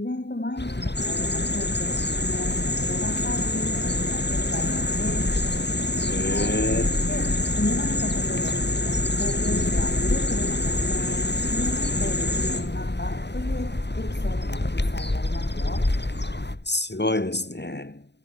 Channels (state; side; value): late; right; 0.50 ms